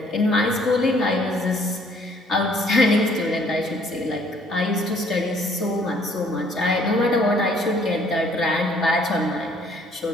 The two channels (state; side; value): normal; both; correlation 0.61